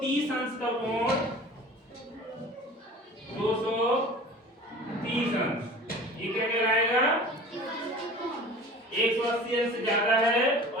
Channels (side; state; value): both; normal; correlation 0.41